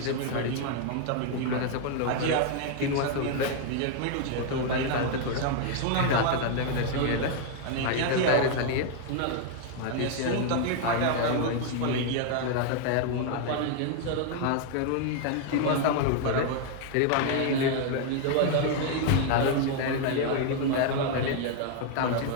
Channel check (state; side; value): different; both; correlation 0.00